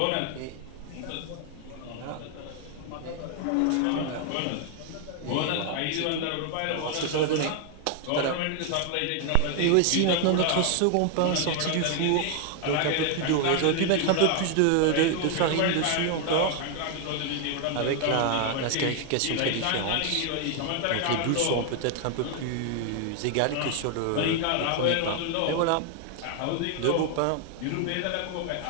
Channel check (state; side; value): different; both; correlation 0.00